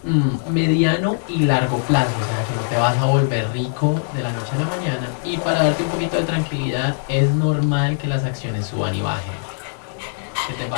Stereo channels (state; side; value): silent; right; digital silence